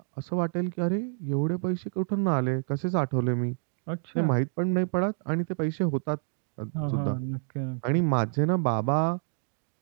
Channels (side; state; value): left; silent; 59 dB below the other